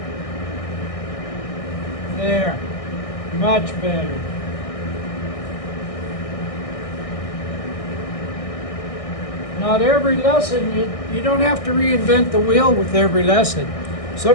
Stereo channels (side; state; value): right; late; 1.6 ms